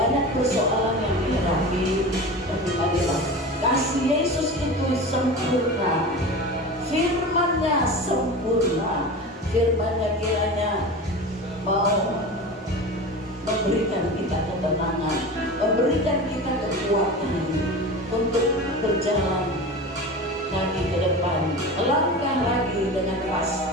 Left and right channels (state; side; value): normal; both; correlation 0.31